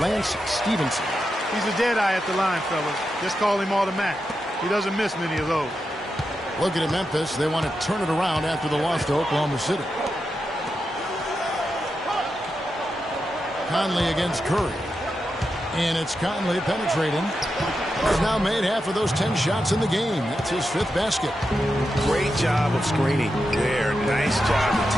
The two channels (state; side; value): normal; both; correlation 0.88